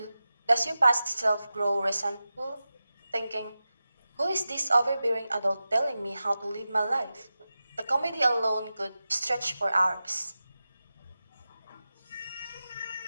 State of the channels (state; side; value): inverted; both; correlation -0.93